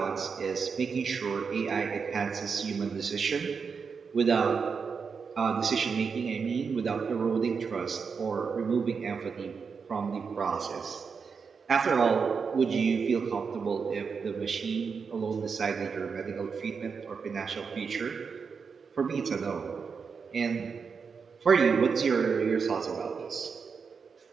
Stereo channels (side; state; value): left; quieter; 5.6 dB